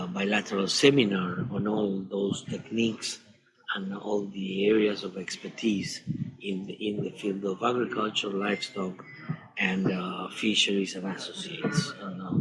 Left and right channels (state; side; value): identical; both; correlation 1.00